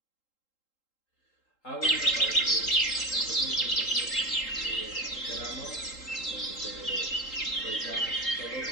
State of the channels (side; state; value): right; late; 3.8 ms